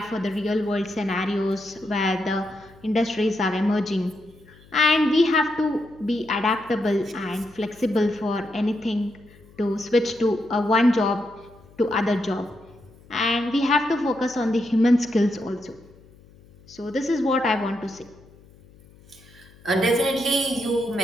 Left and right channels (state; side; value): noise; left; hum, 25 dB below the sound